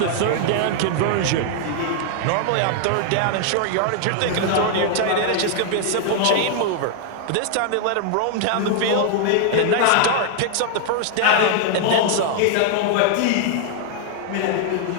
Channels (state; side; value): different; both; correlation 0.00